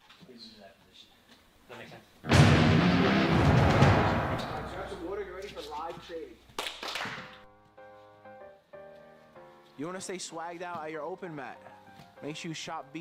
into that position. Does that make sense? Grab some water, get ready for live trading. You want to stay swagged out at your open mat? Make sure you shop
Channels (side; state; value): both; identical; correlation 1.00